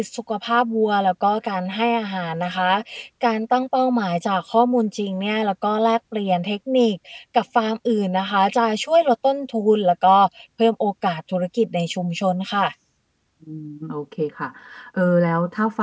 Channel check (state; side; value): identical; both; correlation 1.00